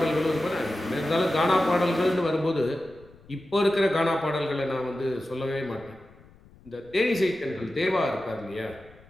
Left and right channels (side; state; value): left; noise; rumble, 25 dB below the sound